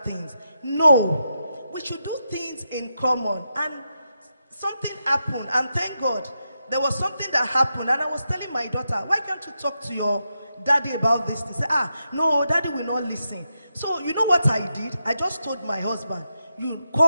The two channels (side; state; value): both; inverted; correlation -0.86